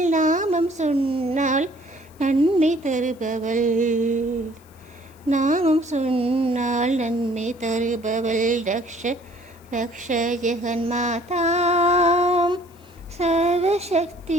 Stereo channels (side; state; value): left; noise; hiss, 29 dB below the sound